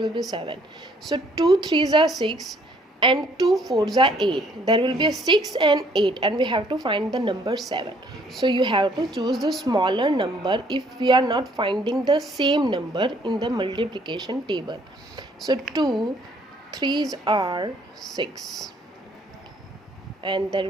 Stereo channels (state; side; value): normal; both; correlation 0.63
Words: be 7. So 2 threes are 6 and 2 fours are 8. There will be a 6 and 8, and we have to find the number 7. So you have to choose the smaller number if we are not finding the same number in the multiplication table. So 2 threes are 6, and there